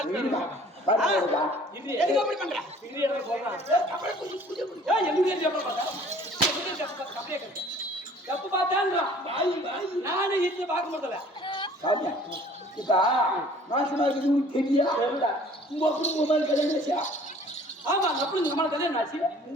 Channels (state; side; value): normal; both; correlation 0.52